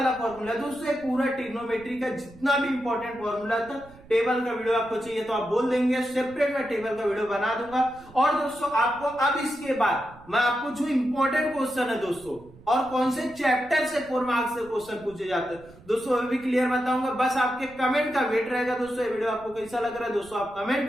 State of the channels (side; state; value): right; noise; rumble, 22 dB below the sound